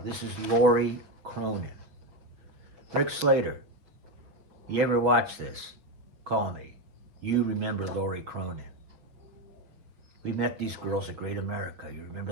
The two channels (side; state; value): left; late; 6.5 ms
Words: this is Lori Cronin. Rick Slater, you ever watch this? Call me. You remember Lori Cronin. We met these girls at Great America. You